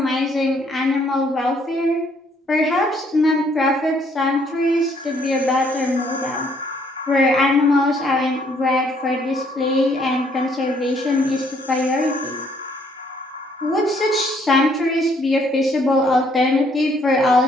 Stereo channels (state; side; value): normal; both; correlation 0.66